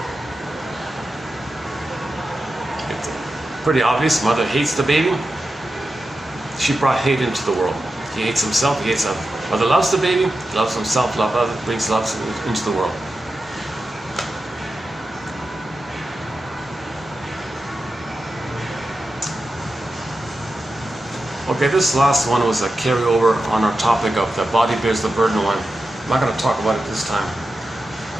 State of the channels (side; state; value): both; normal; correlation 0.91